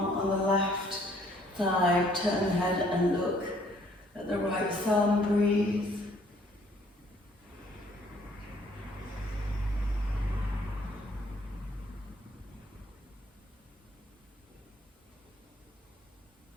on the left thigh. Turn the head and look at the right thumb. Breathe.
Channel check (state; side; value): normal; both; correlation 0.62